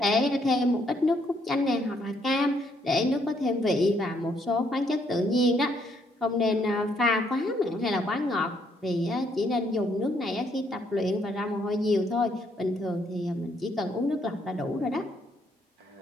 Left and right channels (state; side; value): normal; both; correlation 0.71